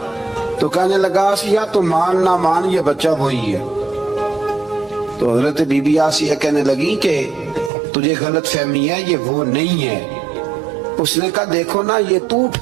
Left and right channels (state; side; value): drops out; left; at 7.7 s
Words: تو کہنے لگا آسیہ تو مان نہ مان یہ بچہ وہی ہے. تو حضرت بی بی آسیہ کہنے لگی کہ تجھے غلط فہمی ہے، یہ وہ نہیں ہے. اس نے کہا دیکھو نا، یہ تو